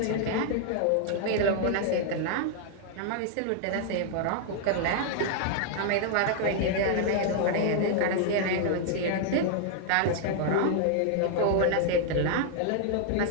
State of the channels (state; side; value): different; both; correlation 0.00